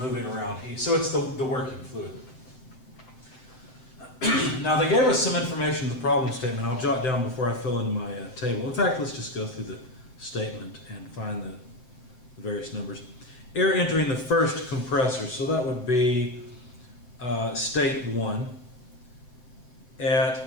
around heat. So it's the working fluid. Now they gave us some information in the problem statement. I'll jot down before I fill in my table. In fact, let's just go through the statement and find the various numbers. Air entering the first compressor, so that would be state 1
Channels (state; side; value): late; right; 7.9 ms